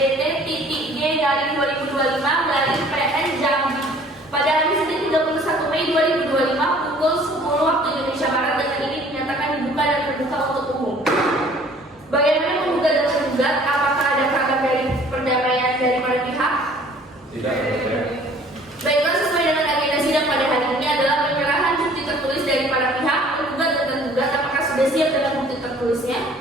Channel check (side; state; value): both; normal; correlation 0.53